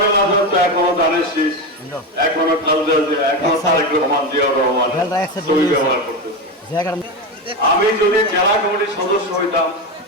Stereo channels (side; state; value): both; normal; correlation 0.16